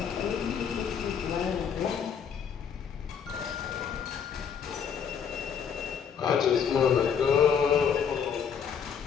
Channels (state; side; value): quieter; right; 7.3 dB